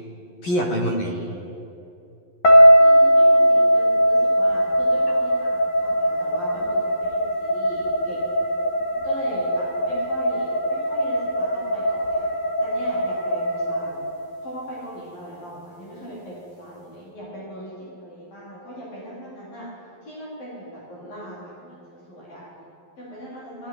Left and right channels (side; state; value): right; late; 11 ms